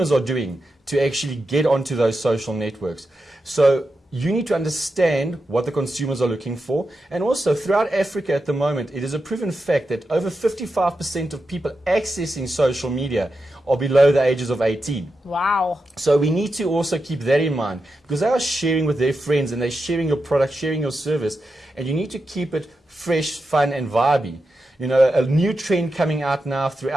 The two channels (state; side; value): normal; both; correlation 0.89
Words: are doing to actually get onto those social networks. So you need to understand what the consumers are looking for. And also, throughout Africa at the moment, it is a proven fact that over 55% of people accessing social media are below the ages of 18. Wow. So we need to also keep that in mind, because they are sharing with their friends and they're sharing your product, sharing your service, and you need to keep it fresh, fun, and vibey. A new trend coming out now